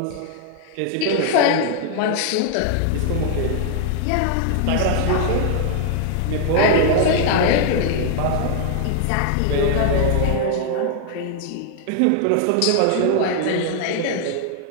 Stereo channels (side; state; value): both; different; correlation 0.00